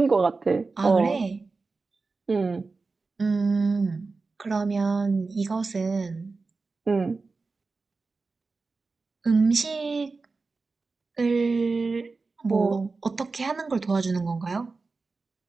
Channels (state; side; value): quieter; left; 4.0 dB